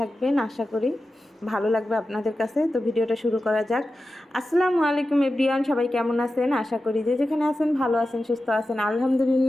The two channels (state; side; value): normal; both; correlation 0.92